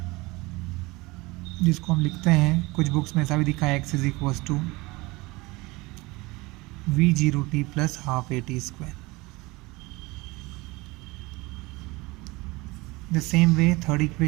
जिसको हम लिखते हैं कुछ बुक्स में ऐसा भी दिखा है x is equals to v zero t plus half a t square. The same way third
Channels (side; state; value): left; quieter; 22.9 dB